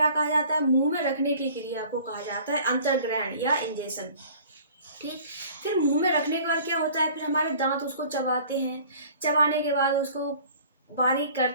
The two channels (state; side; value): inverted; both; correlation -0.49